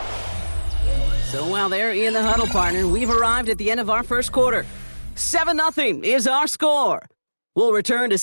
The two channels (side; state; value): both; inverted; correlation -1.00